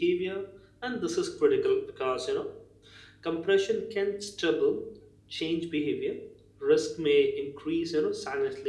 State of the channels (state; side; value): identical; both; correlation 1.00